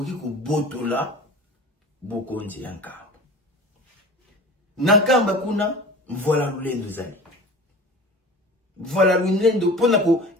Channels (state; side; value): normal; both; correlation 0.38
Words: ko botola bokonzi yankamba. Nakamba kuna, voilà l'ulendo zali. Voilà l'ulendo, pour